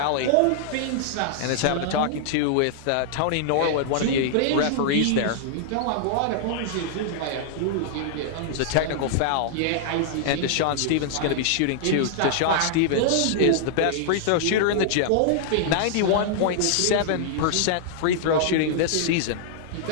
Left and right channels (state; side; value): different; both; correlation -0.01